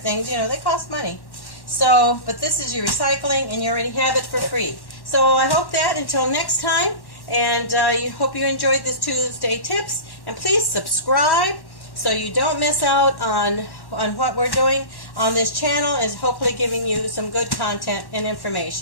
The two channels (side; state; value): right; late; 1.1 ms